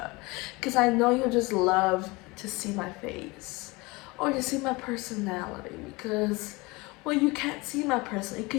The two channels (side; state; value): right; quieter; 24.1 dB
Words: because I know you'll just love to see my face or to see my personality. Because, well, you can't see my personality, you